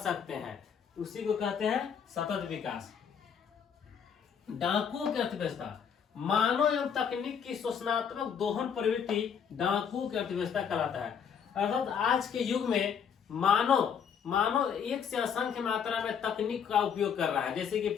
हैं, उसी को कहते हैं सतत विकास। डाकुओं की अर्थव्यवस्था। मानव एवं तकनीक की शोषणात्मक दोहन प्रवृत्ति डाकुओं की अर्थव्यवस्था कहलाता है। अर्थात आज के युग में मानव एक से असंख्य मात्रा में तकनीक का उपयोग कर रहा है, जैसे कि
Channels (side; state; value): right; quieter; 7.4 dB